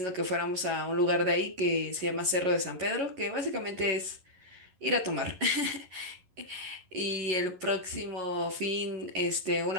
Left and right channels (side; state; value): left; late; 11 ms